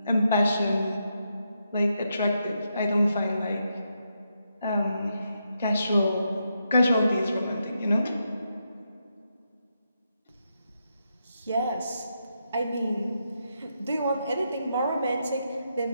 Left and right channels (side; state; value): both; inverted; correlation -0.82